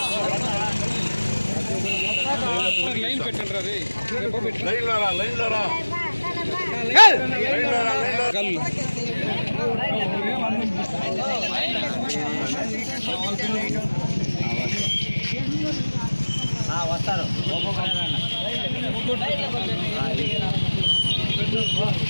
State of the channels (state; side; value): inverted; both; correlation -1.00